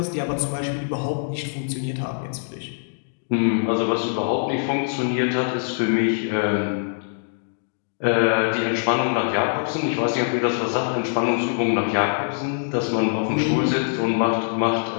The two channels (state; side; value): silent; right; digital silence